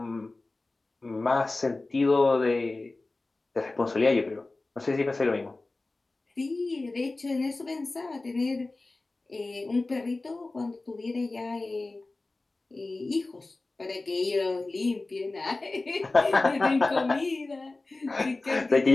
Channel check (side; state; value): right; quieter; 3.2 dB